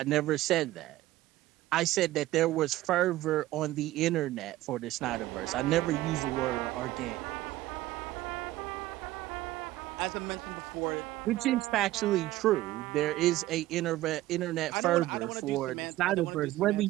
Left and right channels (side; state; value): left; quieter; 16.2 dB